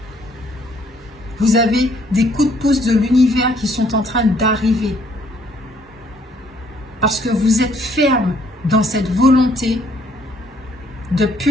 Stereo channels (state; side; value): normal; both; correlation 0.65